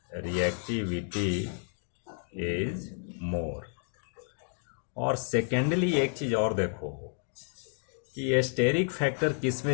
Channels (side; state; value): right; silent; 56 dB below the other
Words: और सेकेंडली एक चीज और देखो कि स्टेरिक फैक्टर किस में